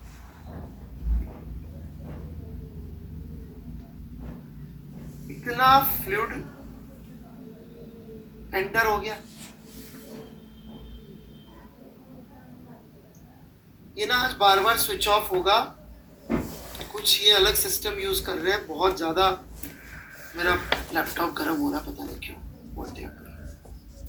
इतना फ्लूइड एंटर हो गया। ये ना आज बार बार स्विच ऑफ होगा, कुछ ये अलग सिस्टम यूज कर रहे हैं। बहुत ज्यादा मेरा लैपटॉप गर्म हो रहा, पता नहीं क्यों।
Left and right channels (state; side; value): identical; both; correlation 1.00